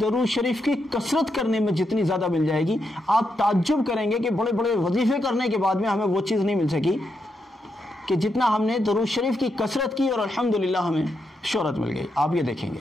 درود شریف کی کثرت کرنے میں جتنی زیادہ مل جائے گی، آپ تعجب کریں گے کہ بڑے بڑے وظیفے کرنے کے بعد میں ہمیں وہ چیز نہیں مل سکی کہ جتنا ہم نے درود شریف کی کثرت کی، اور الحمدللہ ہمیں شہرت مل گئی۔ آپ یہ دیکھیں گے،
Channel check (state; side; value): normal; both; correlation 0.83